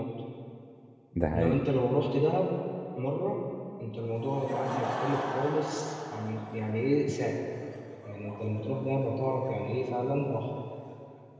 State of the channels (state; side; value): identical; both; correlation 1.00